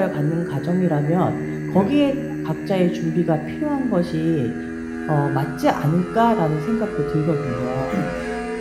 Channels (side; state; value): both; identical; correlation 1.00